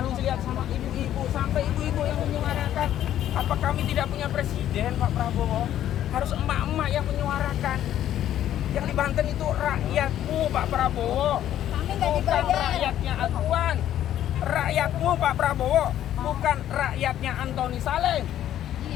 lihat sama ibu-ibu, sampai ibu-ibu yang menyuarakan. Apa kami tidak punya presiden Pak Prabowo? Harus emak-emak yang menyuarakan. Yang di Banten itu rakyatmu Pak Prabowo, bukan rakyatnya Aguan. Rakyatmu Pak Prabowo, bukan rakyatnya Antoni Salim.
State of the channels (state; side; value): quieter; right; 11.6 dB